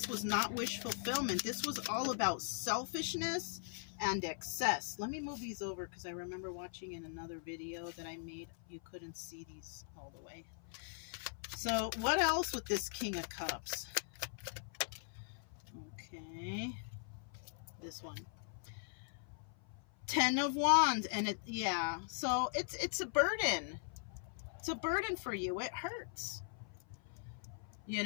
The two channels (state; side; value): silent; right; 51 dB below the other